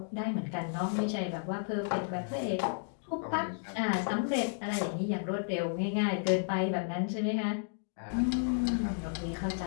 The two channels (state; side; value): silent; right; digital silence